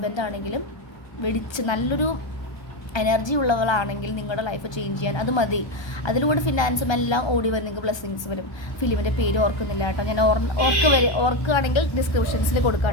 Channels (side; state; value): right; late; 1.3 ms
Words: ആണെങ്കിലും നല്ലൊരു എനർജി ഉള്ളവളാണെങ്കിൽ നിങ്ങളുടെ ലൈഫ് ചേഞ്ച് ചെയ്യാൻ അത് മതി. അതിലൂടെ ഫിനാൻസും എല്ലാം ഓടി വരും, നിങ്ങൾക്ക് ബ്ലെസ്സിങ്സ് വരും. ഫിലിമിൻ്റെ പേര് ഓർക്കുന്നില്ല കേട്ടോ, ഞാൻ ഓർക്കുകയാണെങ്കിൽ ഡിസ്ക്രിപ്ഷൻസിൽ കൊടുക്കാം